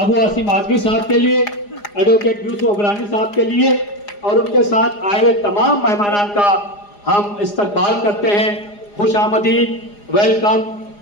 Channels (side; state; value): right; late; 4.9 ms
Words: आसिम आजमी साहब के लिए, एडवोकेट यूसुफ अबरानी साहब के लिए और उनके साथ आए हुए तमाम मेहमानान का हम इस्तकबाल करते हैं। खुश आमदीद, वेलकम,